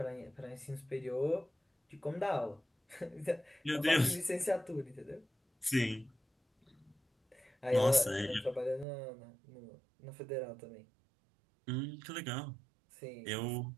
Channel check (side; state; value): left; drops out; at 8.8 s